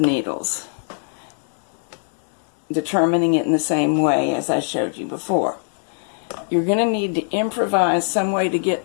determining it in the same way as I showed you before. You're going to need to improvise some way to get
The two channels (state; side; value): silent; right; digital silence